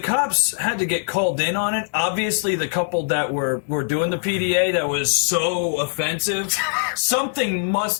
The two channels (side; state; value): right; silent; digital silence